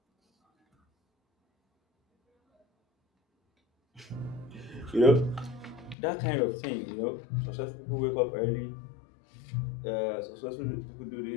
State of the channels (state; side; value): drops out; right; at 6.0 s